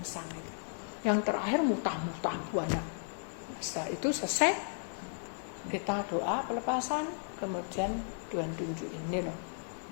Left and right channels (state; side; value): silent; right; digital silence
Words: Yang terakhir mutah-mutah banyak. Setelah itu selesai, kita doa pelepasan, kemudian Tuhan tunjukin ini loh,